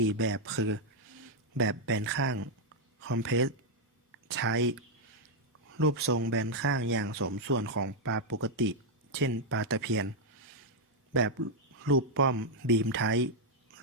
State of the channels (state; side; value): normal; both; correlation -0.01